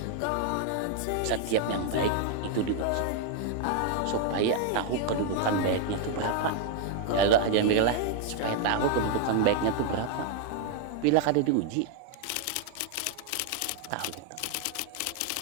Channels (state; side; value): different; both; correlation 0.00